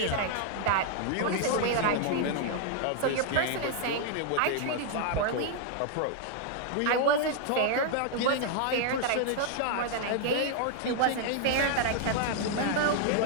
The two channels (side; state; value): both; different; correlation 0.00